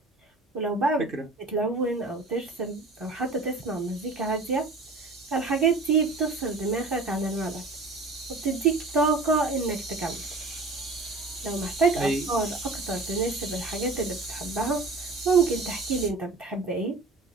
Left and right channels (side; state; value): left; quieter; 3.3 dB